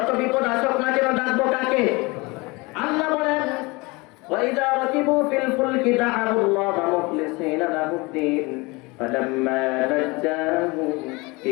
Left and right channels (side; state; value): right; quieter; 25.1 dB